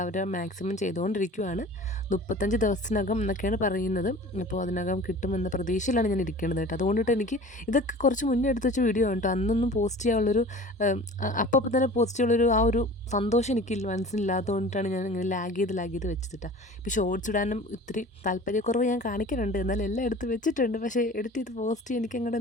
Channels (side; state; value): both; normal; correlation 0.41